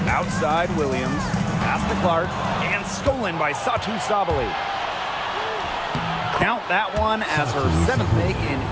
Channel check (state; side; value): identical; both; correlation 1.00